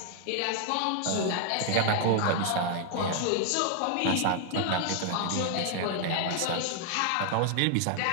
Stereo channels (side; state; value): both; different; correlation 0.00